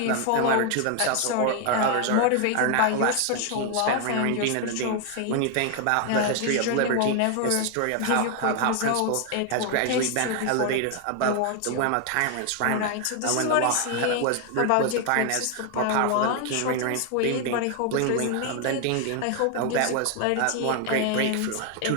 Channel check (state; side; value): different; both; correlation 0.01